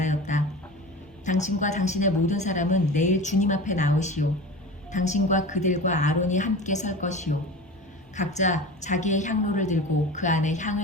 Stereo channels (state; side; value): normal; both; correlation 0.32